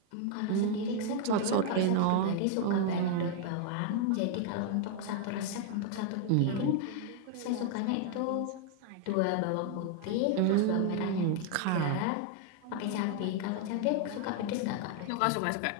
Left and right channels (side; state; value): both; different; correlation 0.00